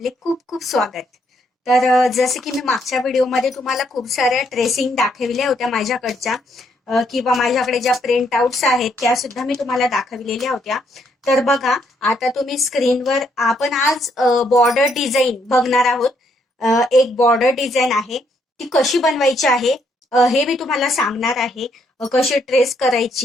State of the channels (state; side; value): normal; both; correlation 0.73